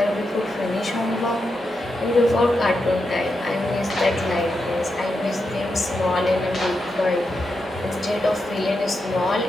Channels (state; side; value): normal; both; correlation 0.86